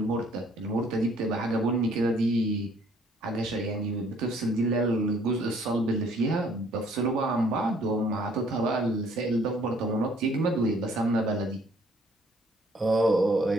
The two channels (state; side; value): normal; both; correlation 0.61